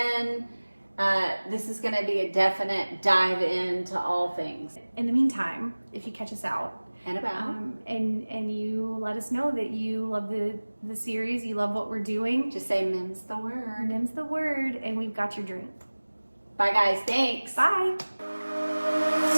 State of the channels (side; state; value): both; inverted; correlation -1.00